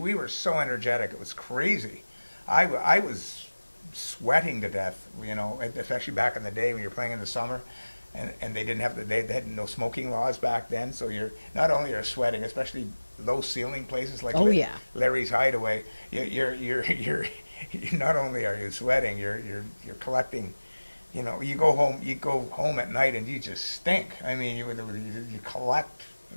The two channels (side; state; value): both; inverted; correlation -1.00